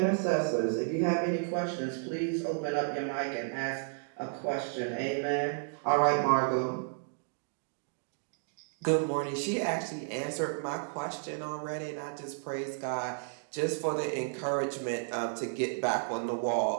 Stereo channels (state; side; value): silent; left; digital silence